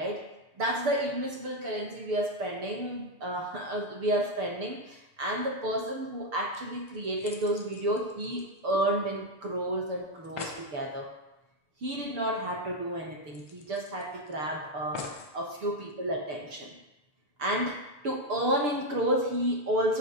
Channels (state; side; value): late; left; 6.8 ms